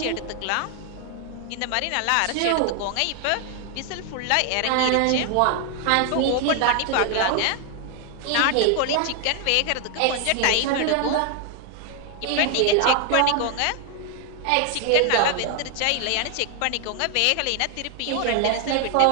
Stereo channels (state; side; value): different; both; correlation 0.00